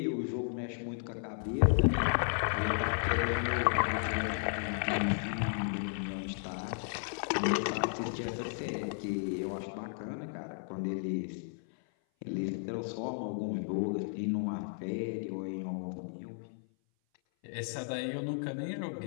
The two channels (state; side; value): silent; right; 55 dB below the other